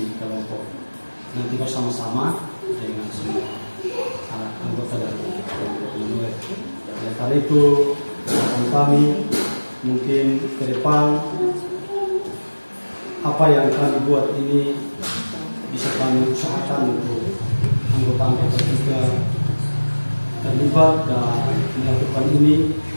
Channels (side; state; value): both; inverted; correlation -1.00